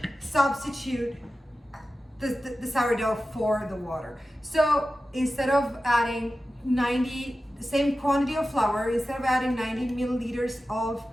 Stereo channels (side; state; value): both; normal; correlation 0.94